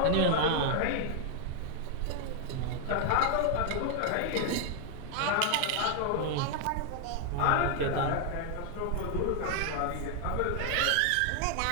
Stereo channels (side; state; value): both; different; correlation 0.00